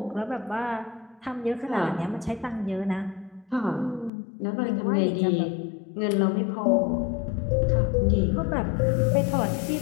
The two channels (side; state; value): right; drops out; at 4.1 s